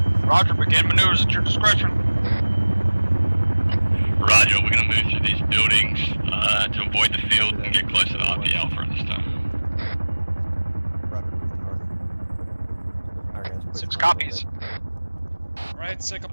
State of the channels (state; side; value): inverted; both; correlation -1.00